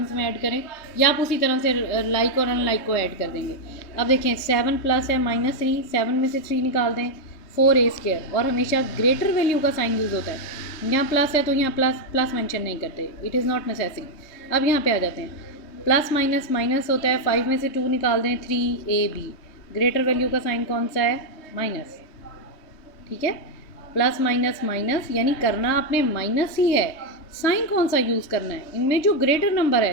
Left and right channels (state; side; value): late; right; 3.3 ms